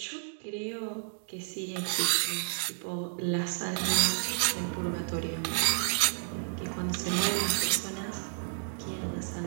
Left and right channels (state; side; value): silent; left; digital silence